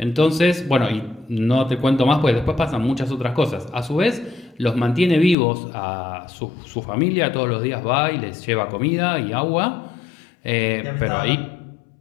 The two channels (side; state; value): right; drops out; at 5.4 s